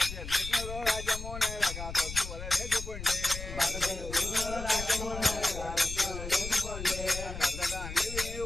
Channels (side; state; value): left; noise; rumble, 8 dB below the sound